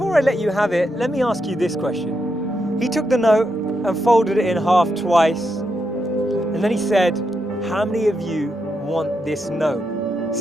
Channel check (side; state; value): both; normal; correlation 0.83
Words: I let you have it, let me ask you this question. He took the note and folded it in half twice. And then he said, how many of you want this note?